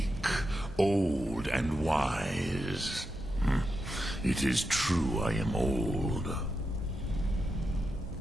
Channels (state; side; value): normal; both; correlation 0.87